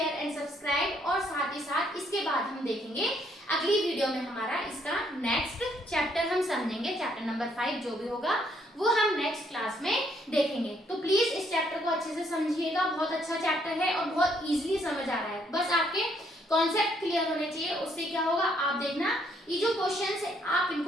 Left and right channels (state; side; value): normal; both; correlation 0.69